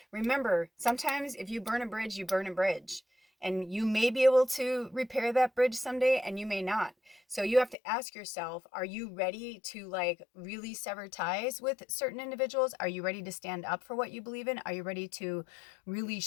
remember, sometimes if you burn a bridge, you burn a bridge. And you may be able to repair that bridge someday, and you may not. So you have to ask yourself, are you ready to like really sever ties with certain individuals? Are you ready to stand up for what you believe in? Are you ready to really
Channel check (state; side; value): drops out; right; at 7.8 s